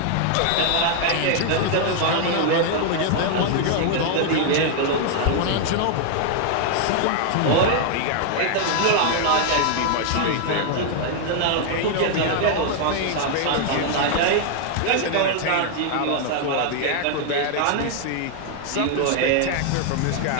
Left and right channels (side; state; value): both; different; correlation 0.00